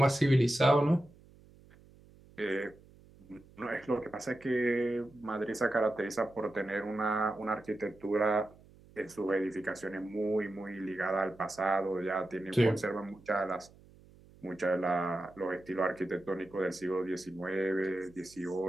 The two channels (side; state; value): right; noise; hum, 25 dB below the sound